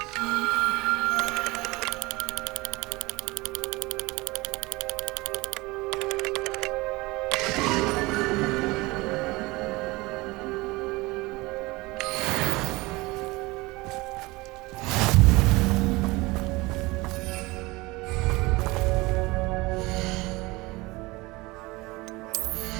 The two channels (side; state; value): left; quieter; 22.4 dB